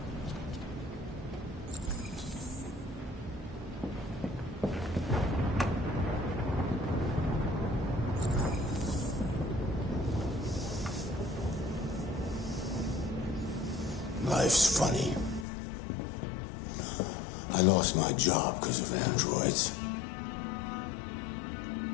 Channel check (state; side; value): drops out; right; at 15.5 s